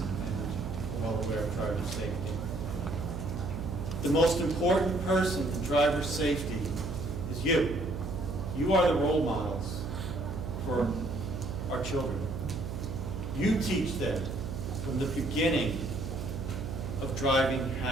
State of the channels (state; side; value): noise; right; hum, 6 dB below the sound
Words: and well aware of driver safety. The most important person in driver safety is you. You are the role models for our children. You teach them from the beginning of driving